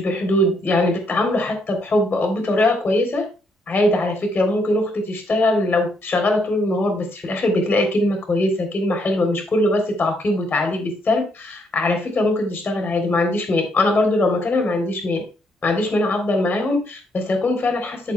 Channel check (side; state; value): both; normal; correlation 0.74